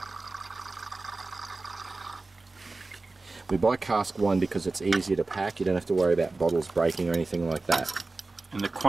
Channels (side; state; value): left; quieter; 3.4 dB